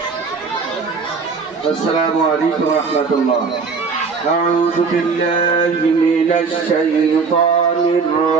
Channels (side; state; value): left; quieter; 4.9 dB